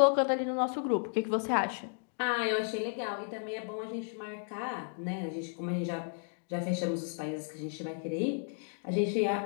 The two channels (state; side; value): silent; right; 56 dB below the other